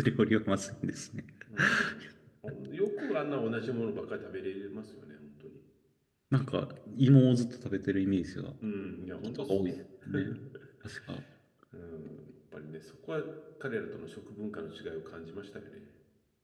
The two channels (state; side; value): identical; both; correlation 1.00